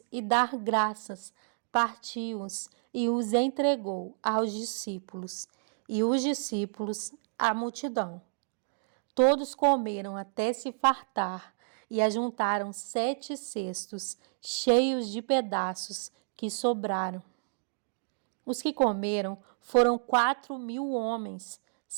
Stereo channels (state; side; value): silent; left; digital silence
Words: e dar graças, partiu-os e os entregou aos discípulos, e os discípulos à multidão. Todos comeram até se fartar e ajuntaram 7 cestos cheios de pedaços que sobraram. Os que comeram foram 4.000 homens,